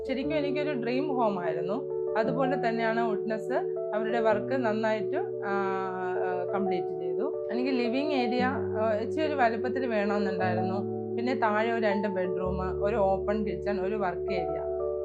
ശരിക്കും എനിക്കൊരു ഡ്രീം ഹോം ആയിരുന്നു. അതുപോലെ തന്നെയാണ് വുഡ്നെസ് അവരുടെ വർക്ക് നന്നായിട്ട് കംപ്ലീറ്റ് ചെയ്തു. എനിക്ക് ലിവിങ് ഏരിയ ഇച്ചിരി ഒരു വലുപ്പത്തിൽ വേണമെന്നുണ്ടായിരുന്നു. പിന്നെ താഴെ ഒരു 2 ബെഡ്റൂം, ഒരു ഓപ്പൺ കിച്ചൺ, ഒരു വർക്ക് ഏരിയ,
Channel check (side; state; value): both; identical; correlation 1.00